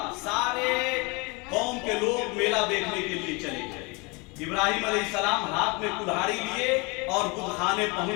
سارے قوم کے لوگ میلہ دیکھنے کے لیے چلے گئے. ابراہیم علیہ السلام ہاتھ میں کلہاڑی لیے اور بت خانے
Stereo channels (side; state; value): right; quieter; 28.1 dB